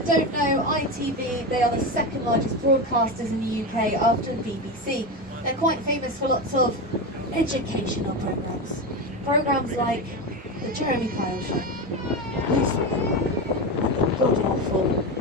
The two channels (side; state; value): both; normal; correlation 0.18